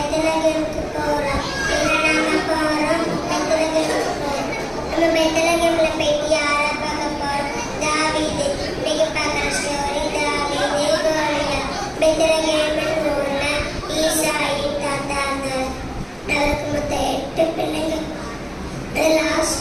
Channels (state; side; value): identical; both; correlation 1.00